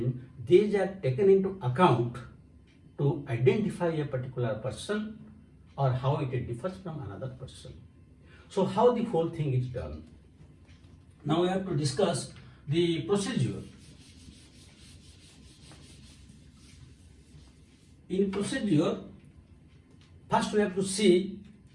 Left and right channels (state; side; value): identical; both; correlation 1.00